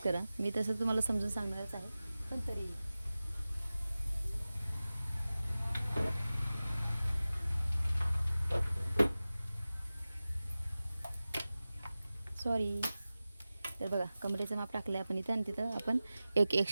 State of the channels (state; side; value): inverted; both; correlation -0.96